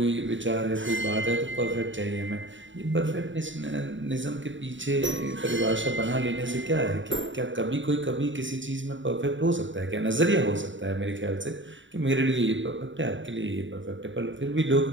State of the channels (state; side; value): late; left; 0.55 ms